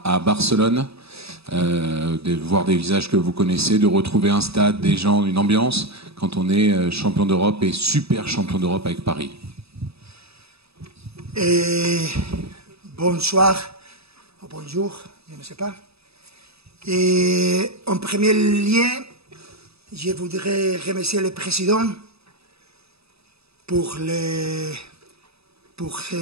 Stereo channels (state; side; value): late; left; 0.78 ms